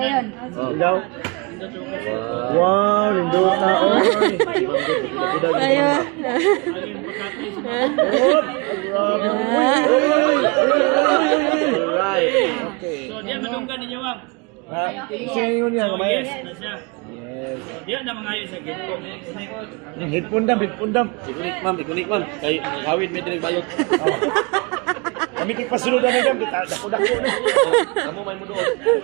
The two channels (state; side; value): quieter; left; 29.8 dB